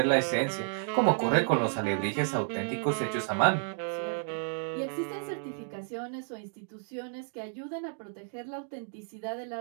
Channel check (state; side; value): silent; left; digital silence